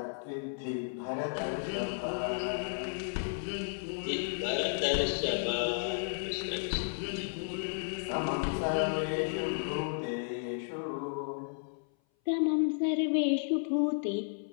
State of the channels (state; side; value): silent; right; 56 dB below the other